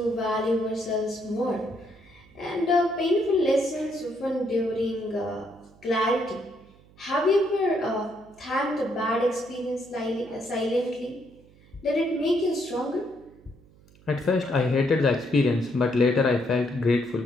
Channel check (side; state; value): right; noise; hum, 26 dB below the sound